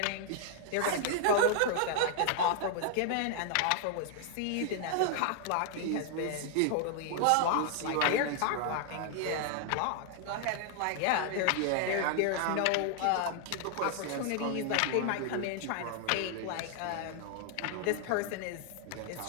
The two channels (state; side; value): different; both; correlation 0.00